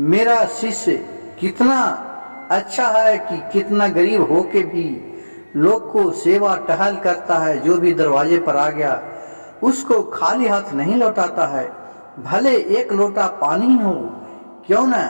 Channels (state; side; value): inverted; both; correlation -1.00